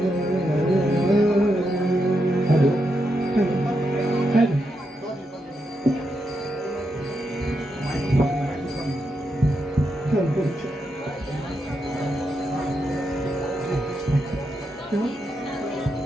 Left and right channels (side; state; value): both; normal; correlation 0.84